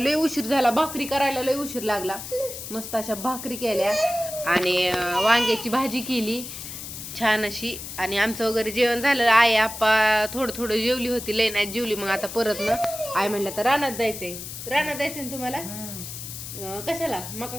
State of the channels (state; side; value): noise; left; hiss, 9 dB below the sound